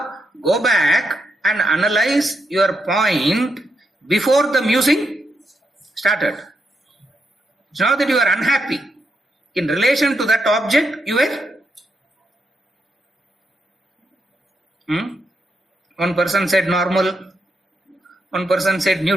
go back and analyze your point before the musing started. It's not that you are unhappy. In relation to that object, you were. One person said normal, one person said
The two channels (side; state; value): both; normal; correlation 0.81